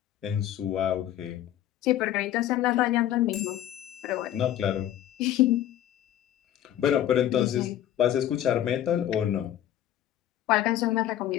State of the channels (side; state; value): right; quieter; 11.9 dB